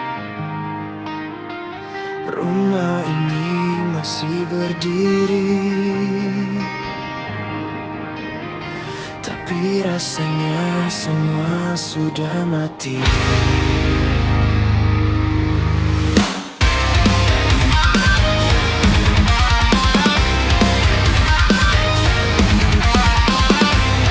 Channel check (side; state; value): both; identical; correlation 1.00